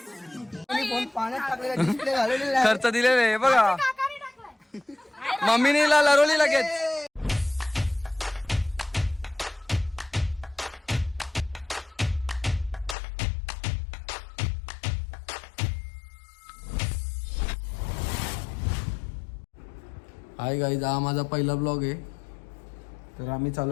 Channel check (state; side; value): drops out; right; at 13.0 s